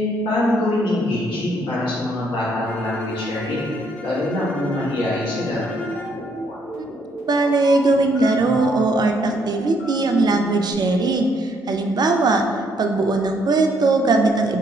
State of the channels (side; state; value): both; normal; correlation 0.70